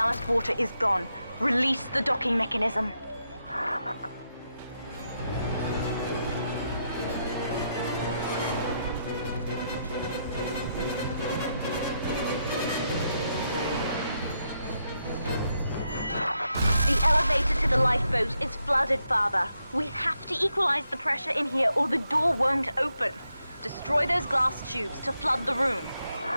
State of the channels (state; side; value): inverted; both; correlation -0.81